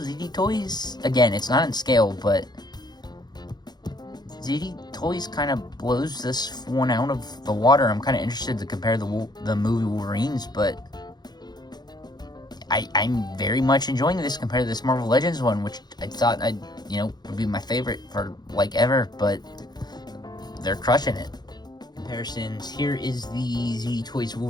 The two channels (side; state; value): right; late; 0.20 ms